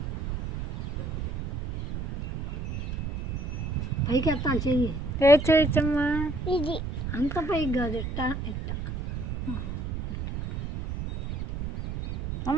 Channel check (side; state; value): right; noise; rumble, 5 dB below the sound